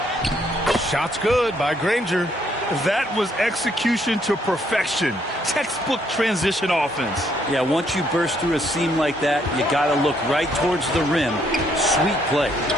Shot's good by Granger. That was execution to perfection. Textbook transition offense. Yeah, once you burst through a seam like that, you got to look right towards the rim. Sweet play.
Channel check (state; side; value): normal; both; correlation 0.70